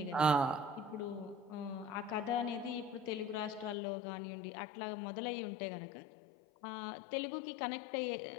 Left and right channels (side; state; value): right; drops out; at 3.8 s